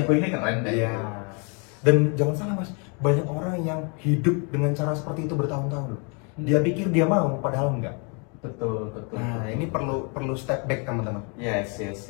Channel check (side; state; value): right; quieter; 35.4 dB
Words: ini keren deh. Iya. Dan jangan salah Mas, banyak orang yang hidup dengan cara seperti itu bertahun-tahun loh. Dia pikir dia mau, padahal enggak. Betul. Nah, ini perlu step back teman-teman. Yes.